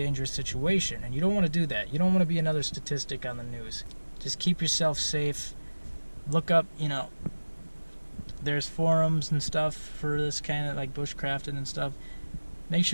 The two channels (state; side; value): inverted; both; correlation -1.00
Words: situation, and you don't want to do that. You don't want to be another statistic on the news. Just keep yourself safe. Look up, there's forums and stuff for this kind of like bushcrafting and stuff. Make